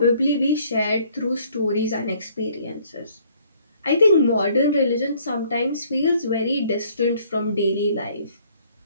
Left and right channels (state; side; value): inverted; both; correlation -0.61